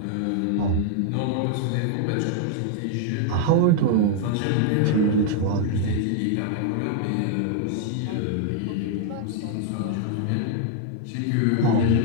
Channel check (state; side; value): different; both; correlation 0.00